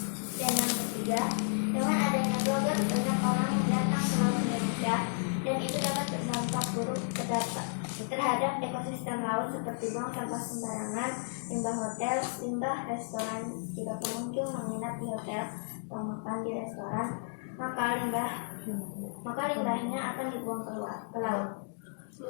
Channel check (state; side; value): silent; right; digital silence